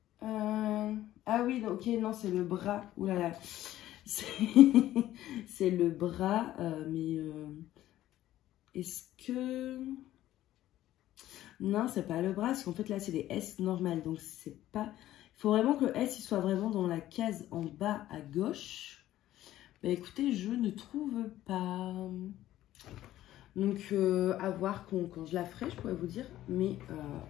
Ah oui, ok, non, c'est le bras. Ouh là là. C'est le bras, mais est-ce que... Non, c'est pas le bras, parce qu'en fait, là, c'est des S normales, donc c'est pas... Il faut vraiment que le S, il soit vraiment dans la case en bas à gauche. Bah écoutez, je ne trouve pas... Donc, à voir quand je la ferai, je pourrais vous dire. Mais,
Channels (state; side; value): quieter; right; 13.8 dB